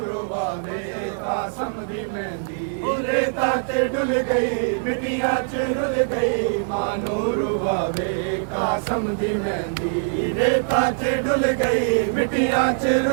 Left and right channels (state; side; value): silent; left; 58 dB below the other